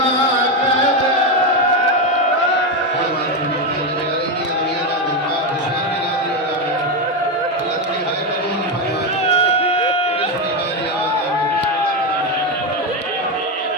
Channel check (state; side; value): normal; both; correlation 0.10